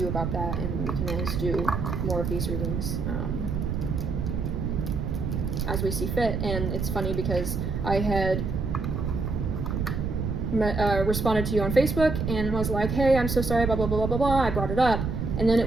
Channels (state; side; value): noise; right; rumble, 2 dB below the sound